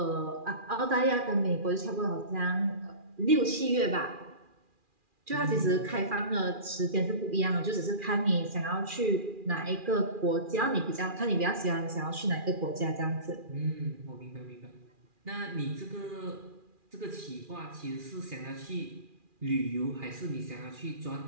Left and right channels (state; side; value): late; left; 2.4 ms